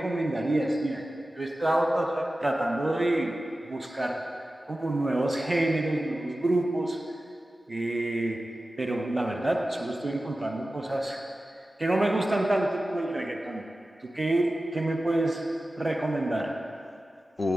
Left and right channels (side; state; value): both; normal; correlation 0.95